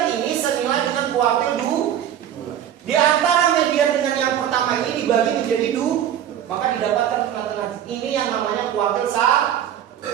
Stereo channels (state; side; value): quieter; left; 10.3 dB